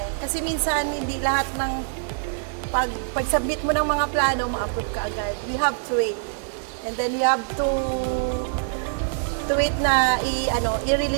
Kasi minsan hindi lahat ng pag-submit mo ng mga plano, ma-approve ka agad. We have to wait. And then we have to wait na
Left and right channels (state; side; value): silent; left; digital silence